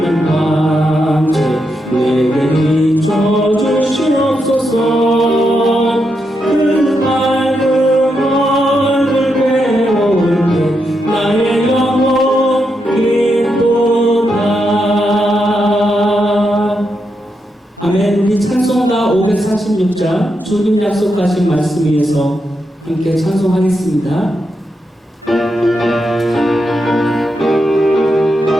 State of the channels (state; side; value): normal; both; correlation 0.84